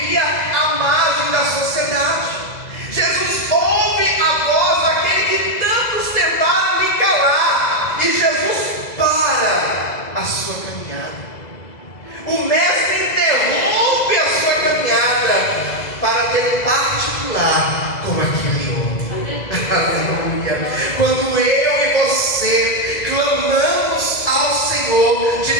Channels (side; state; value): right; late; 2.0 ms